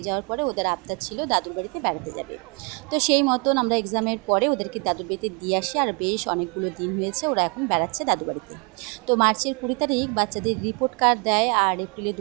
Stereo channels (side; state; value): left; quieter; 32.3 dB